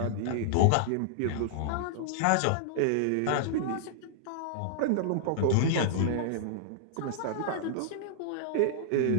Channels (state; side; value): different; both; correlation -0.01